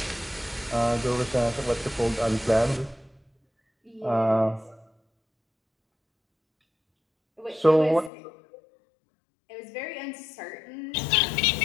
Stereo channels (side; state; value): right; drops out; at 8.1 s